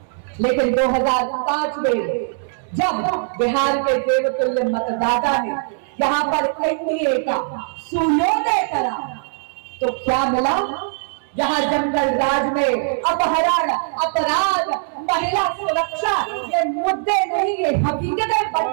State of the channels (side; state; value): left; silent; 65 dB below the other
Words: लेकिन 2005 में जब बिहार के देवतुल्य मतदाता ने यहाँ पर एनडीए का सूर्योदय करा, तो क्या मिला? जहाँ जंगल राज में अपहरण, अपराध, महिला सुरक्षा ये मुद्दे नहीं, ये हकीकतें